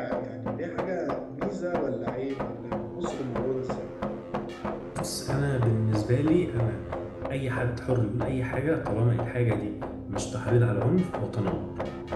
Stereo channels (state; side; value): identical; both; correlation 1.00